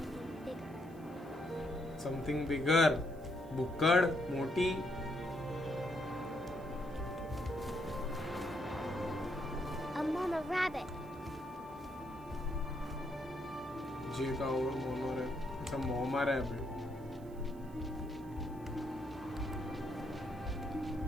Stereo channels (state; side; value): noise; right; hiss, 27 dB below the sound